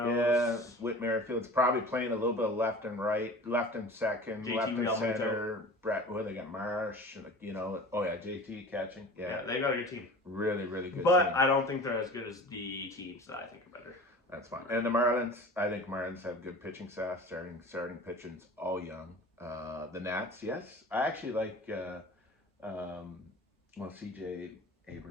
Whit Merrifield's probably playing a little bit of left and right, left and second, JT left and Realmuto. center. Brett, they got Marsh, oh yeah, JT catching, yeah, they got a good team. Really, really good. But team. I don't think they're as good as the teams that I think are better. That's fine. And the Marlins, I think Marlins have good pitching staff, starting pitchers, all young. The Nats, yes, I actually like. CJ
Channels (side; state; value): both; normal; correlation 0.39